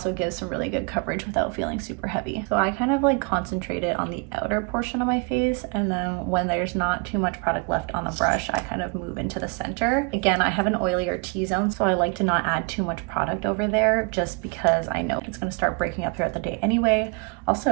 gives some really good coverage without feeling super heavy. So I kind of like concentrated on the outer portion of my face, and then when there's not too much product left on the brush, I kind of move into the center. Again, I have an oilier T-zone, so I like to not add too much product over there just because I know it's gonna start breaking up throughout the day anyway.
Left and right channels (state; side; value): quieter; left; 33.5 dB